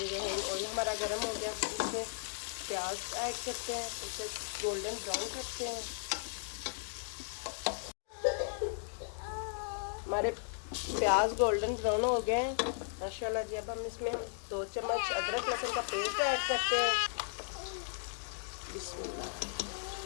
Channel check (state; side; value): silent; right; digital silence